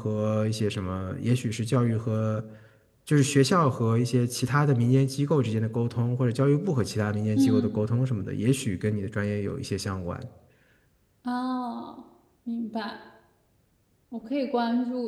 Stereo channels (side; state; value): both; identical; correlation 1.00